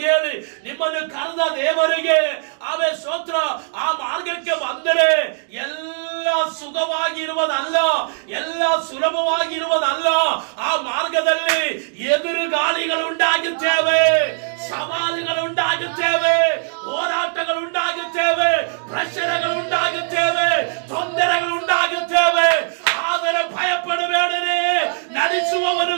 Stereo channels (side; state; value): left; silent; digital silence